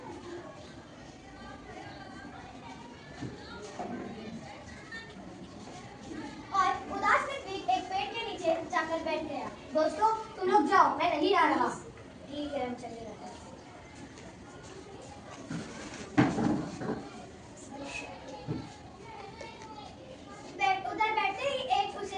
और उदास ऋत्विक एक पेड़ के नीचे जाकर बैठ गया। दोस्तों, तुम लोग जाओ, मैं नहीं आ रहा। ठीक है, हम चले जाते हैं। उधर बैठते ही एक उसे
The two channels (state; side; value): identical; both; correlation 1.00